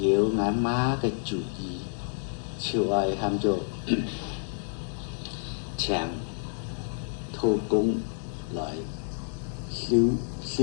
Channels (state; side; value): silent; right; digital silence